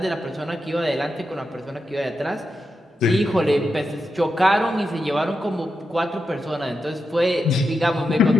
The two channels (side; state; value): both; normal; correlation 0.87